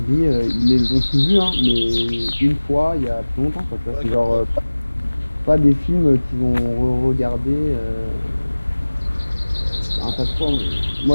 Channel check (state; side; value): inverted; both; correlation -1.00